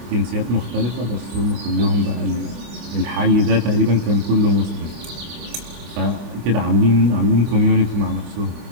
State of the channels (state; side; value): late; left; 25 ms